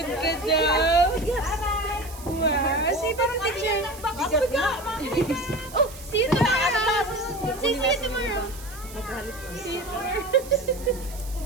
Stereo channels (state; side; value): noise; right; hiss, 17 dB below the sound